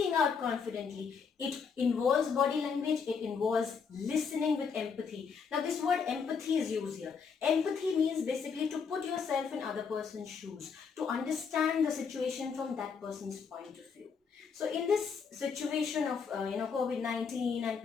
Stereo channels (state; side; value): quieter; right; 5.9 dB